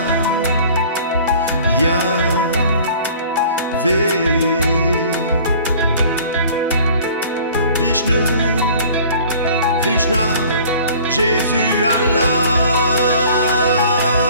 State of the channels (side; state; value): both; inverted; correlation -0.49